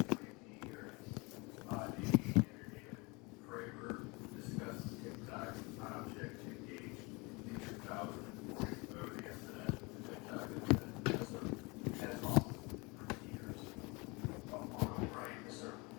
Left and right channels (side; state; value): right; quieter; 27.0 dB